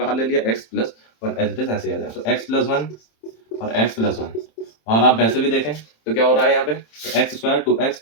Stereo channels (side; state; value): right; late; 27 ms